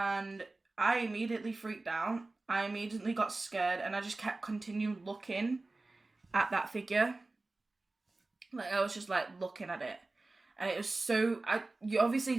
I immediately freaked out. I immediately got scared, and I just kept continuing looking at that figure. I was just looking at it. And it was so, you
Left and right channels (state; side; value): quieter; left; 3.2 dB